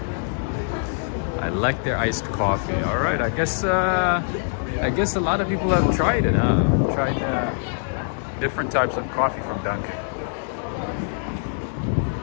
I like their iced coffee. All right. I guess a lot of people have tried it. Tried different types of coffee from Dunkin'.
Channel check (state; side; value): silent; right; digital silence